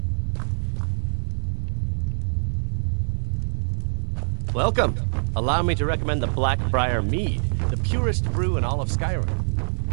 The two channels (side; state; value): left; silent; 55 dB below the other